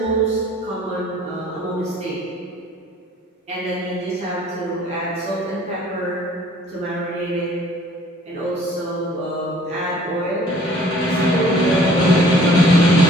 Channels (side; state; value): both; normal; correlation 0.55